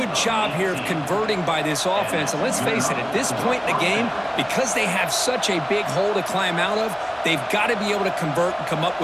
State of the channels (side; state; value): both; identical; correlation 1.00